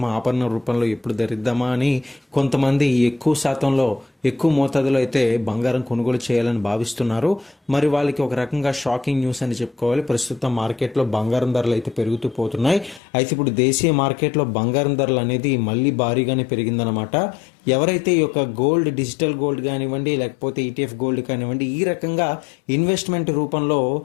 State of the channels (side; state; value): right; drops out; at 13.0 s